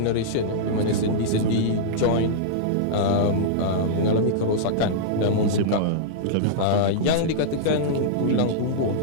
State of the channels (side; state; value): both; different; correlation -0.02